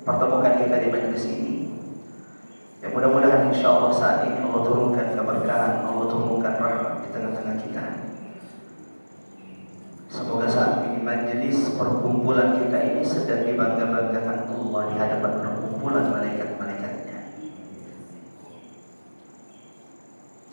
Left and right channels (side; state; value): both; inverted; correlation -1.00